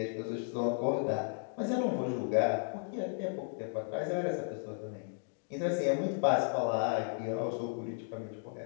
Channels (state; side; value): silent; right; digital silence